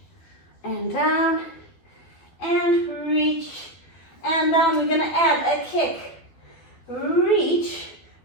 and down and reach and down. We're gonna add a kick. Reach.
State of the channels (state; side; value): late; right; 12 ms